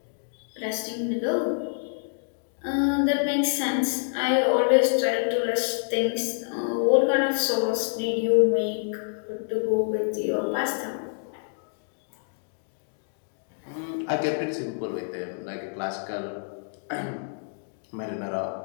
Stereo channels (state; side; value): silent; right; digital silence